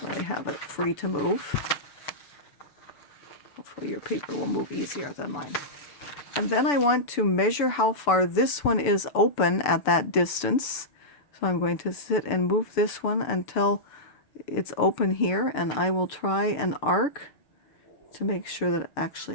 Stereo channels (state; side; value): late; right; 6.9 ms